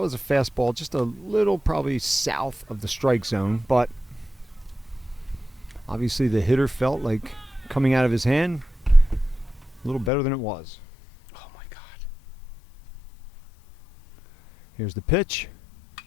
was a fastball, just a little probably south of the strike zone. But obviously the hitter felt like coming out of his hand a little better than it was. Oh, my God. Here's the pitch.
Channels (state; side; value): drops out; right; at 10.1 s